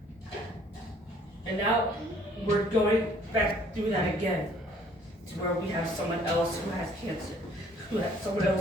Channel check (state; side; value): normal; both; correlation 0.59